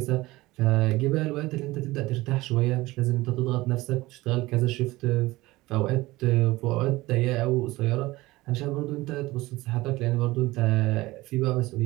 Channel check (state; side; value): quieter; left; 19.5 dB